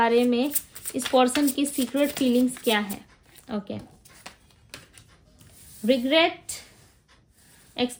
में इस पर्सन की सीक्रेट फीलिंग्स क्या है। ओके, रिग्रेट,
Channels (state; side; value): identical; both; correlation 1.00